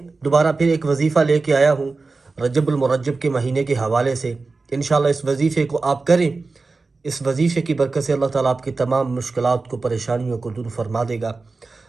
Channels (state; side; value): quieter; left; 3.9 dB